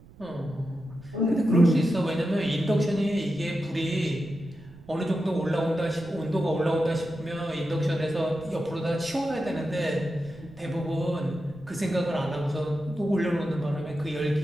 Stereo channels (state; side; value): noise; right; rumble, 22 dB below the sound